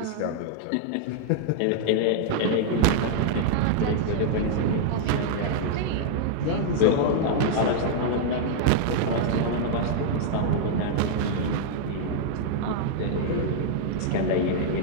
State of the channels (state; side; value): different; both; correlation -0.01